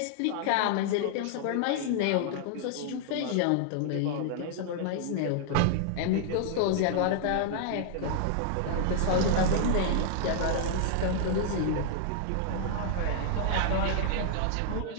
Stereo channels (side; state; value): both; different; correlation -0.01